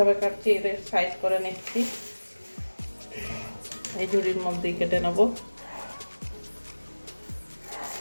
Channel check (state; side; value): inverted; both; correlation -1.00